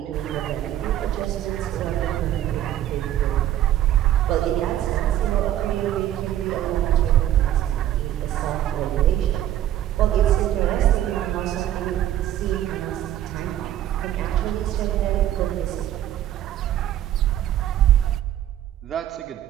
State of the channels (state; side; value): quieter; left; 12.2 dB